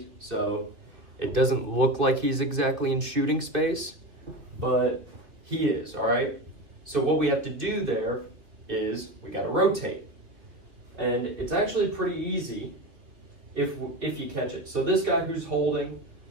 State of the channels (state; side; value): late; left; 2.6 ms